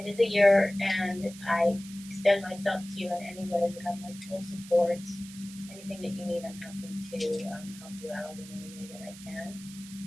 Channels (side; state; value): right; noise; hiss, 17 dB below the sound